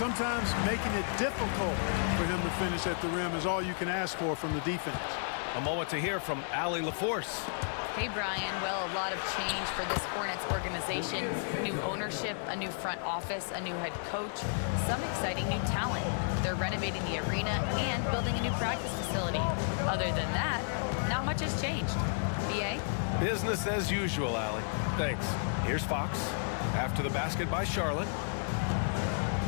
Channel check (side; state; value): right; silent; digital silence